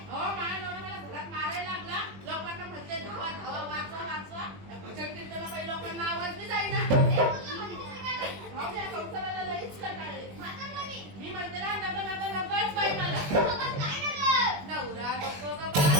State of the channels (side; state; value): left; late; 21 ms